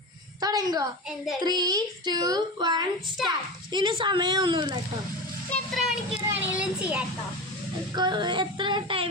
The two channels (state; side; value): normal; both; correlation 0.25